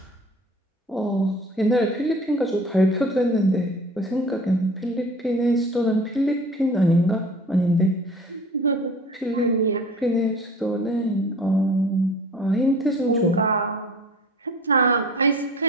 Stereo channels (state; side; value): normal; both; correlation 0.44